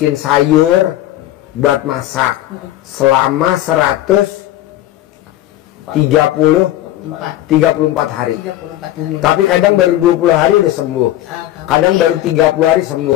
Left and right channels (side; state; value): right; quieter; 14.0 dB